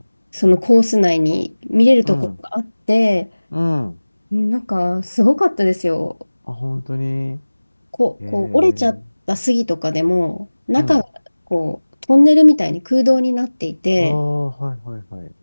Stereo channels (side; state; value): both; inverted; correlation -1.00